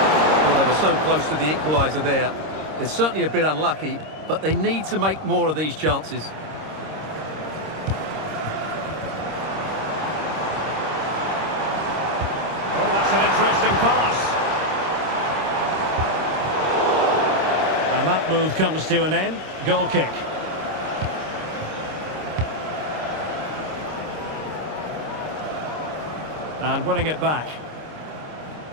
Well, they were so close to the equaliser there. They're certainly a bit unlucky, but they need to make more of these chances. Oh, that's an interesting pass. And that move comes to an end. Goal kick. And winning it back.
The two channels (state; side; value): late; left; 26 ms